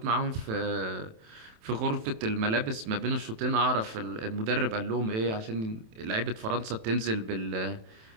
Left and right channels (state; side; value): late; left; 27 ms